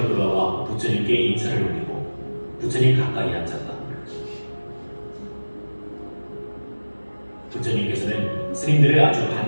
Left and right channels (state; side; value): inverted; both; correlation -1.00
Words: 돌아와 부처님께 인사를 올리고 부처님 가까이 앉았다. 부처님께서는 스님들을 아주